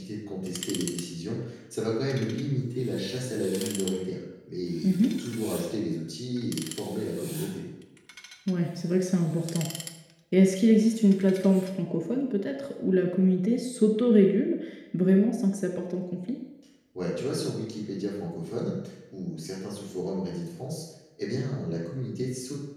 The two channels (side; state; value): both; identical; correlation 1.00